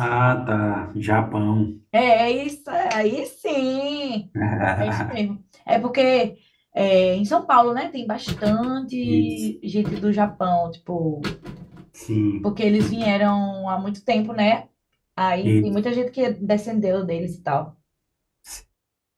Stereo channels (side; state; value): both; identical; correlation 1.00